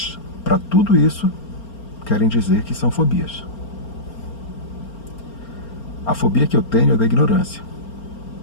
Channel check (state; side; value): late; right; 4.4 ms